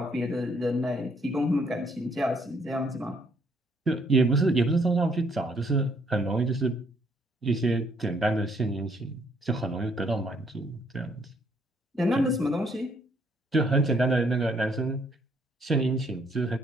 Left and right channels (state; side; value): normal; both; correlation 0.68